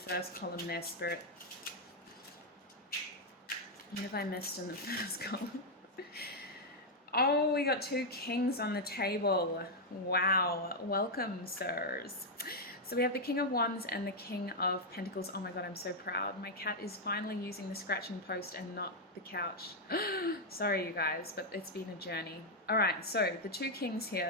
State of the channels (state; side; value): normal; both; correlation -0.01